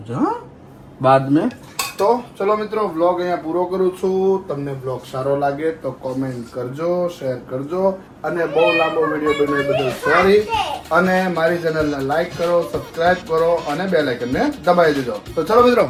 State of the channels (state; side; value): identical; both; correlation 1.00